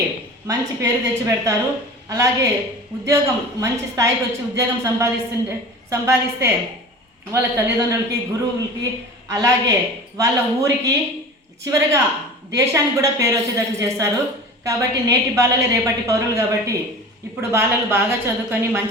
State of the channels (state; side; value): normal; both; correlation 0.36